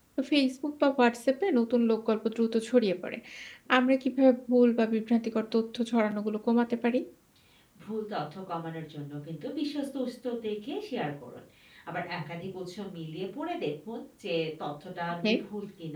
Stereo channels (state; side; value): identical; both; correlation 1.00